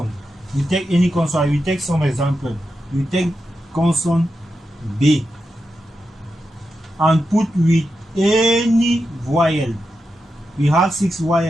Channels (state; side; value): normal; both; correlation 0.88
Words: You take any consonant. We take some example. You take consonant B and put with any vowel. We have 6